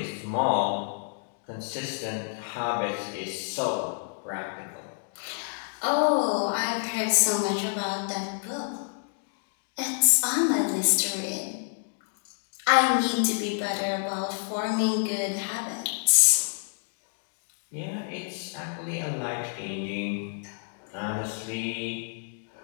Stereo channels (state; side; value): silent; right; 59 dB below the other